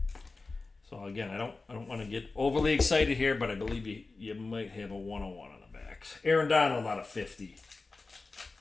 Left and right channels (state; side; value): quieter; right; 3.7 dB